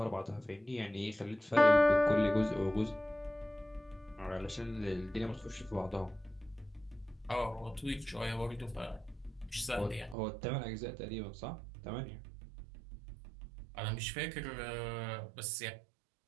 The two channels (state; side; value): drops out; left; at 10.2 s